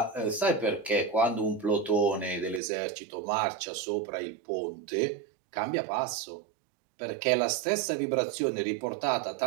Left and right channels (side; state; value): left; drops out; at 2.6 s